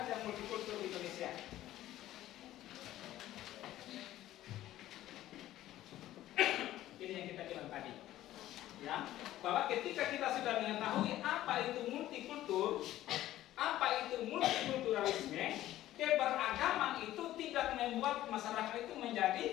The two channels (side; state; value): right; quieter; 14.2 dB